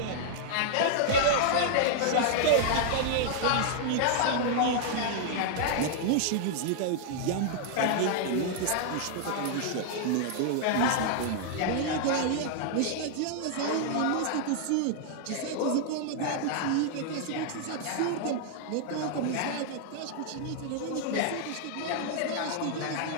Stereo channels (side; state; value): both; different; correlation -0.01